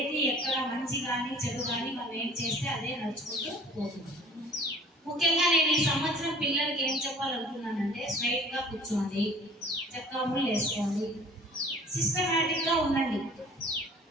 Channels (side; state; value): both; normal; correlation 0.49